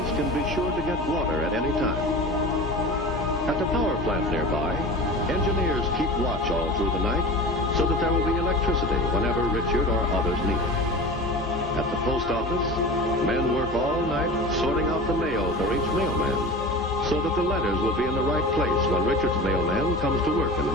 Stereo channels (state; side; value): normal; both; correlation 0.34